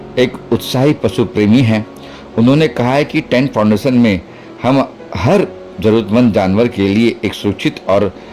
एक उत्साही पशु प्रेमी हैं। उन्होंने कहा है कि टैंक फाउंडेशन में हम हर जरूरतमंद जानवर के लिए एक सुरक्षित और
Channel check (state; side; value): identical; both; correlation 1.00